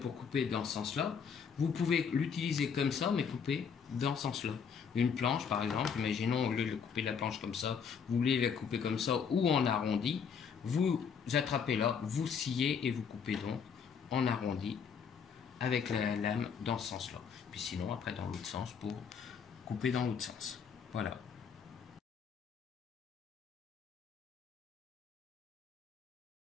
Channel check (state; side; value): quieter; right; 6.6 dB